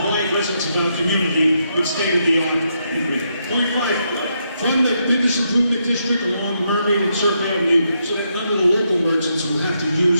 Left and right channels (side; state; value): both; inverted; correlation -0.79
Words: residents of our community with state-of-the-art equipment. Point five, fund the business improvement district along Mermaid and Circle Avenue so that none of the local merchants will have to